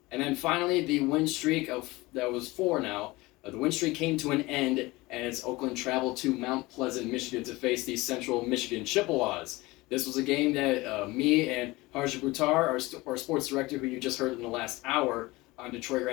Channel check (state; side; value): quieter; right; 21.3 dB